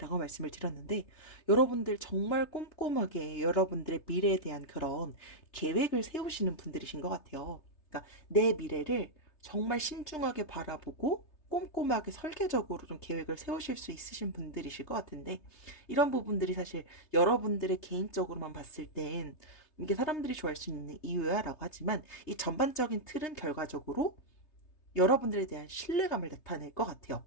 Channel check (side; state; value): right; late; 3.3 ms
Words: 말씀을 드렸는데, 여러분들 정말 꼼꼼하게 여러분들의 미래에 대한 그런 계획을 세우시는 분들이신 것 같아요. 그러니까 내 미래를 정말 신중하게 바라보고 꼼꼼하게 설계적으로 좀 계획을 세우실 수 있으신 분들이실 것 같은데, 이런 부분들이 사실 여러분들의 개인적으로만 봤을 땐 이게 사람들이 좋아할 수 있는 이유야 라고 하지만, 이 전반적인 틀은 결과적으로 여러분들에 대한 신뢰감을 나타낼 것 같아요.